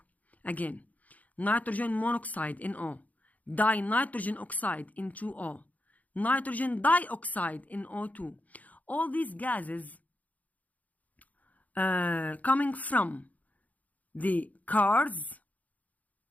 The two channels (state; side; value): late; right; 0.075 ms